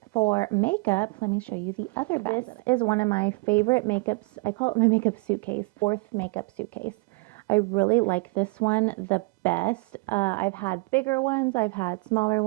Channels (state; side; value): quieter; left; 27.7 dB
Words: for makeup, let me show you the other bag. This is one of my favorite makeups. I call it my makeup suitcase, fourth makeup suitcase. I really like this one the best. I've had bigger ones, I've had smaller